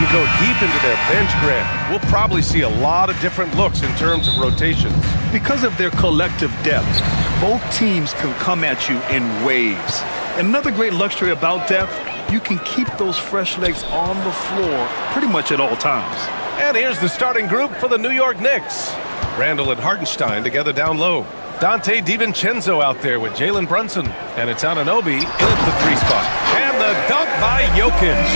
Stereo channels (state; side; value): inverted; both; correlation -1.00